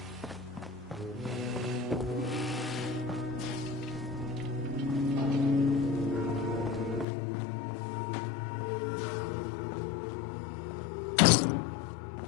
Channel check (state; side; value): drops out; right; at 7.1 s